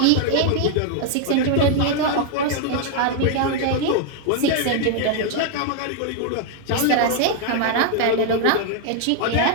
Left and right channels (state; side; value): different; both; correlation 0.00